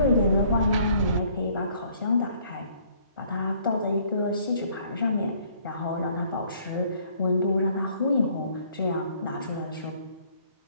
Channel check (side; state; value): both; inverted; correlation -0.61